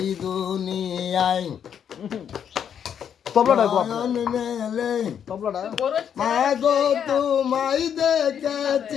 দুনিয়ায় নয়ন মেলে মাগো তোমায়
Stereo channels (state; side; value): quieter; right; 8.4 dB